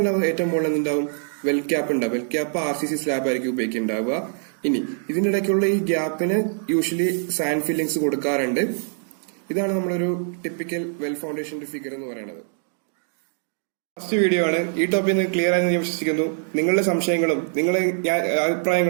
ഏറ്റവും മുകളിൽ എന്തുണ്ടാവും? വെൽ ക്യാപ്പ് ഉണ്ടാവും. വെൽ ക്യാപ്പ് RCC സ്ലാബ് ആയിരിക്കും ഉപയോഗിക്കുന്നുണ്ടാവുക. ഇനി ഇതിന്റെ ഇടയ്ക്കുള്ള ഈ ഗ്യാപ്പിന് യൂഷ്വലി സാൻഡ് ഫില്ലിങ്സ് കൊടുക്കാറുണ്ട്. ഇതാണ് നമ്മളൊരു ടിപ്പിക്കൽ വെൽ ഫൗണ്ടേഷന്റെ ഫിഗർ എന്ന് പറയുന്നത്. ഫസ്റ്റ് വീഡിയോ ആണ്. ഈ ടോപ്പിൽ നിന്ന് ക്ലിയർ ആയെന്ന് ഞാൻ വിശ്വസിക്കുന്നു. നിങ്ങളുടെ സംശയങ്ങളും നിങ്ങളുടെ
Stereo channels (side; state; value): left; silent; digital silence